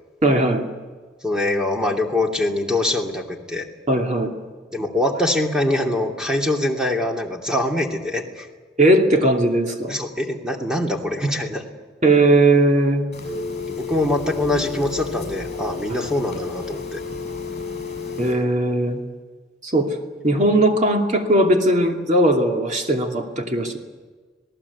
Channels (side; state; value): both; normal; correlation 0.47